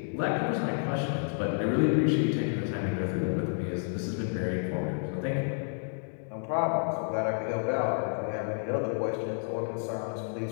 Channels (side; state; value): right; silent; 58 dB below the other